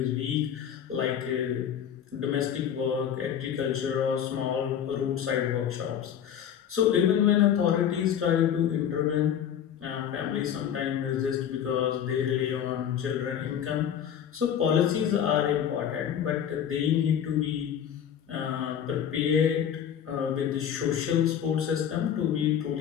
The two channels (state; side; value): quieter; right; 9.1 dB